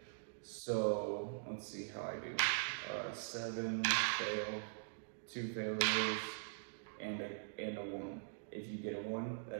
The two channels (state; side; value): silent; left; digital silence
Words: So let's see how I do. 7 fail, 2 failures, and a 1. If you get a 1,